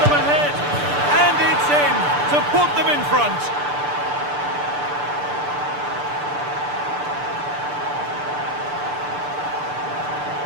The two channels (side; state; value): left; late; 6.8 ms